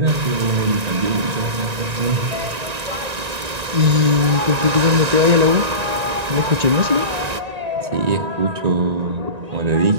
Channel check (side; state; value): left; late; 1.9 ms